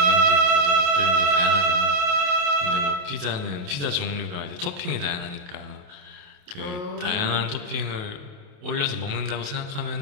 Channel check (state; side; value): late; left; 28 ms